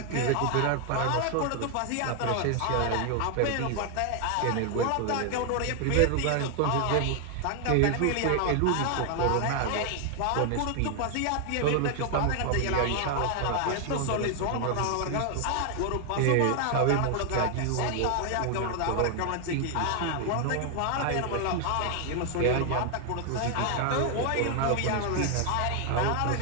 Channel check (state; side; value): different; both; correlation 0.00